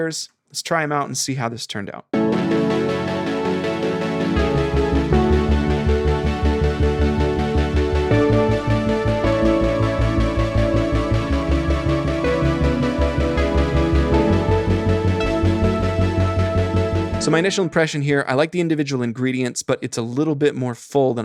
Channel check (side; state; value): both; identical; correlation 1.00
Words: Let's try them out and see how this turned out. So my initial impression here, I like the individual ingredients, but it's a little bit more full than